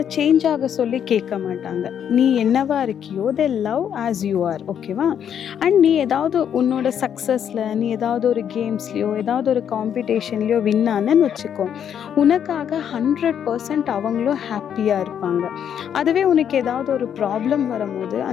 சேஞ்ச் ஆக சொல்லி கேட்க மாட்டாங்க. நீ என்னவா இருக்கியோ they love as you are, ஓகேவா? அண்ட் நீ ஏதாவது உன்னோட சக்ஸஸில் நீ ஏதாவது ஒரு கேம்ஸ்லையோ ஏதாவது ஒரு காம்படிஷன்லையோ வின் ஆனன்னு வச்சுக்கோ, உனக்காக 100% அவங்களும் ஹாப்பியாக இருப்பாங்க. அதுவே உனக்கு ஏதாவது ஒரு ப்ராப்ளம் வரும்போது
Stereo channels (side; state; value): right; quieter; 8.8 dB